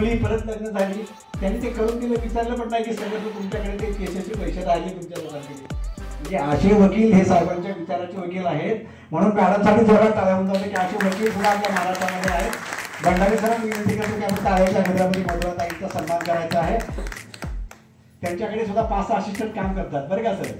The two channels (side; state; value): both; identical; correlation 1.00